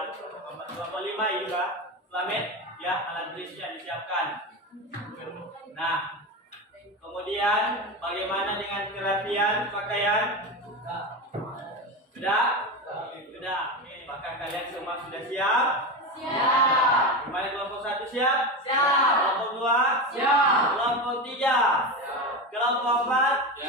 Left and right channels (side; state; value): both; normal; correlation 0.20